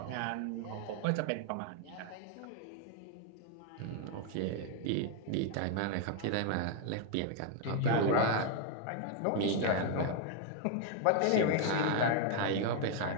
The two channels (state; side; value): different; both; correlation 0.00